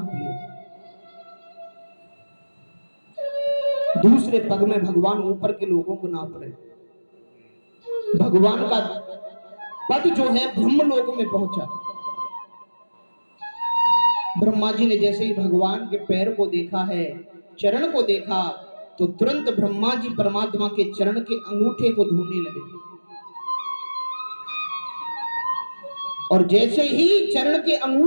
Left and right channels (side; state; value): both; inverted; correlation -1.00